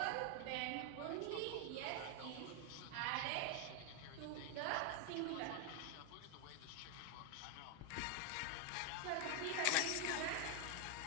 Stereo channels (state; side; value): different; both; correlation 0.01